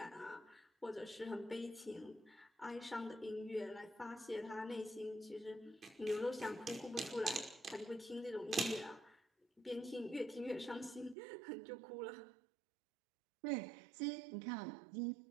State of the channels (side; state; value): left; drops out; at 11.2 s